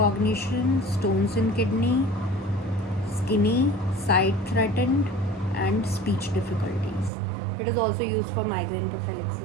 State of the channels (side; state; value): left; drops out; at 7.1 s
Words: stones in kidney, skinny, sight threatened, and speech difficulties. It is also used for migraine